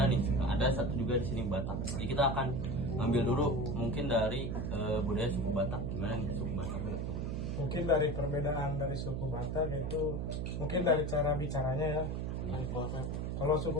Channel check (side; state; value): right; noise; hum, 2 dB below the sound